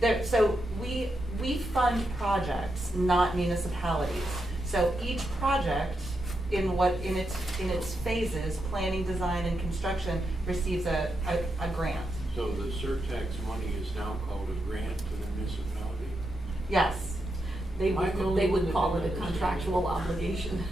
So we fund projects, not municipalities. So each project in its phases, planning, design, and construction, receives a grant. So the Surtax money is now called a grant to the municipality? Yes. They would call it a contractual obligation.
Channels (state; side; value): normal; both; correlation 0.84